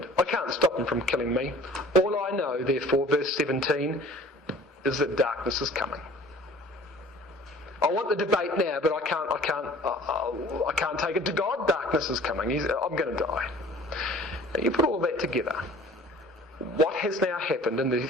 I can't stop him from killing me. All I know, therefore, verse 17, is that darkness is coming. I want the debate now, but I can't take it to God. Darkness is coming. I'm going to die. Now you put all that together. What has now happened in the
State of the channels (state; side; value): normal; both; correlation 0.49